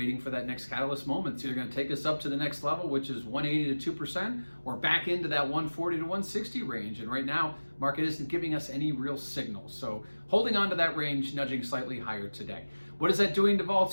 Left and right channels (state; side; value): inverted; both; correlation -1.00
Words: for that next catalyst moment. It's either going to take us up to the next level, which is 180 to 2%, or back into that 140 to 160 range. And right now, market isn't giving us any real signals. So holding on to that range, nudging slightly higher today. What is that doing to